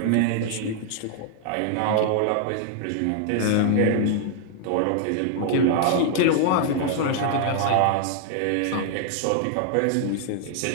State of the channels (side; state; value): both; different; correlation 0.00